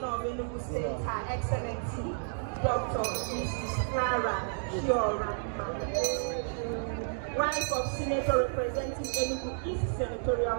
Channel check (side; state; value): left; silent; digital silence